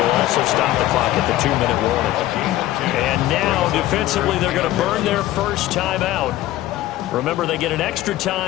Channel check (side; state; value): right; quieter; 15.1 dB